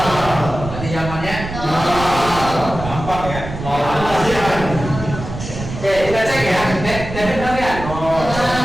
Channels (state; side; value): noise; right; rumble, 9 dB below the sound